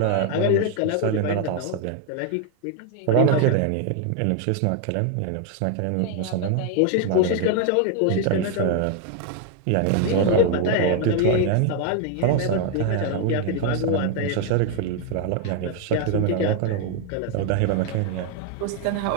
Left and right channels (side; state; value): both; different; correlation 0.01